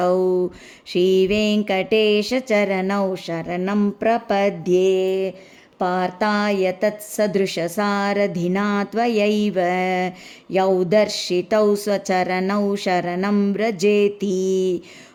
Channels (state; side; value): identical; both; correlation 1.00